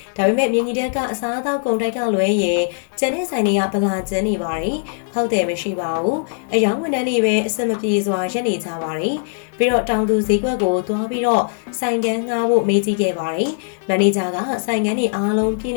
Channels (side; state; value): right; silent; digital silence